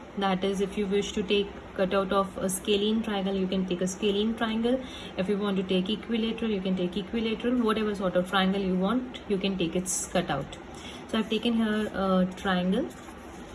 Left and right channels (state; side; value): identical; both; correlation 1.00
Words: that is, if you wish to take cutout of a scalene triangle, you can take a scalene triangle. If you want to take equilateral, you can take equilateral. Whatever sort of triangle you want, you can take its cutout. So I've taken here a triangle.